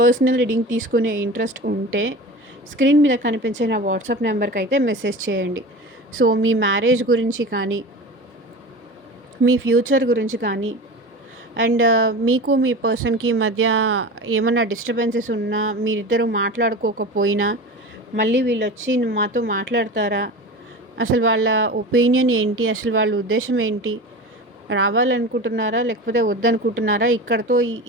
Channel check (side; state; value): both; normal; correlation 0.32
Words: రీడింగ్ తీసుకునే ఇంట్రెస్ట్ ఉంటే స్క్రీన్ మీద కనిపించే నా వాట్సాప్ నెంబర్కి అయితే మెసేజ్ చేయండి. సో మీ మ్యారేజ్ గురించి కానీ, మీ ఫ్యూచర్ గురించి కానీ, అండ్ మీకు మీ పర్సన్కి మధ్య ఏమన్నా డిస్టర్బెన్సెస్ ఉన్నా, మీరిద్దరూ మాట్లాడుకోకపోయినా మళ్ళీ వీళ్ళు వచ్చి మాతో మాట్లాడతారా, అసలు వాళ్ళ ఒపీనియన్ ఏంటి, అసలు వాళ్ళ ఉద్దేశం ఏంటి, రావాలనుకుంటున్నారా లేకపోతే వద్దనుకుంటున్నారా, ఇక్కడతో